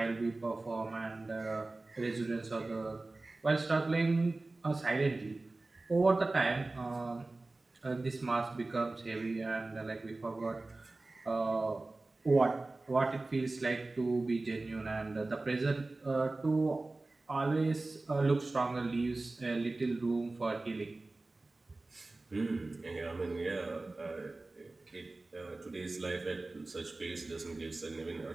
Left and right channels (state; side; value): quieter; left; 3.1 dB